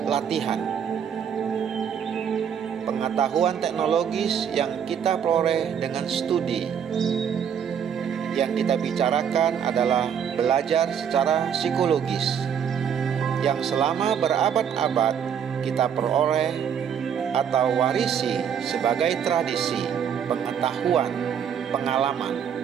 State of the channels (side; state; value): left; quieter; 8.1 dB